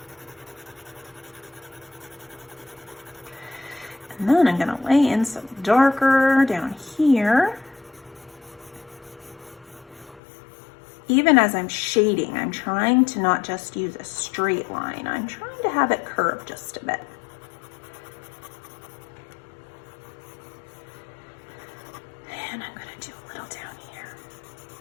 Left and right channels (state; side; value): drops out; right; at 10.2 s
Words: And then I'm going to lay in some darker down here. Even as I'm shading, I'm trying to not just use a straight line. I'm trying to have it curve just a bit. And I'm going to do a little down here.